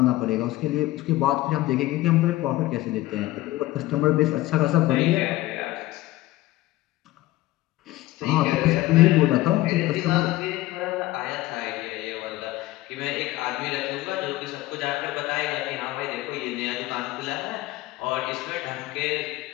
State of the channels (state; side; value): quieter; right; 17.2 dB